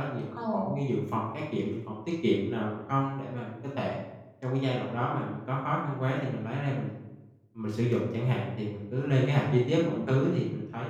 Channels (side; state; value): both; identical; correlation 1.00